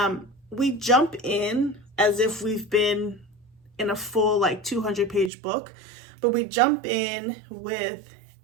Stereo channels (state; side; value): drops out; left; at 5.3 s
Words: We jump in as if we've been in a full like 200-page book, but we jump in with